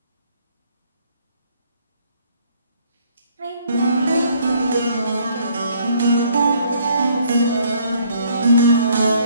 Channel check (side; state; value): both; inverted; correlation -0.63